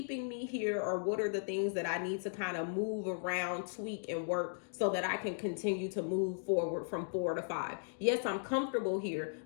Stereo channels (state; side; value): silent; right; digital silence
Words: me here, or what are the things that I need to kind of move around, tweak, and work so that I can continue to move forward from 4 to 5. Yes, I'm comfortable here,